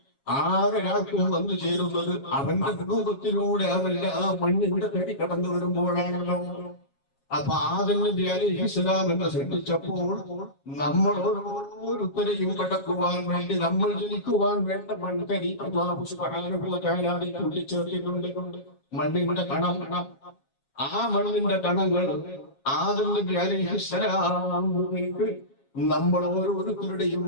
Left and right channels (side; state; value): right; late; 7.3 ms